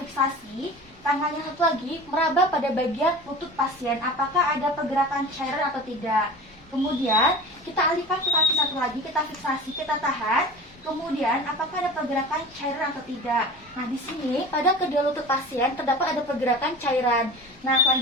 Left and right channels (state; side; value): noise; left; rumble, 29 dB below the sound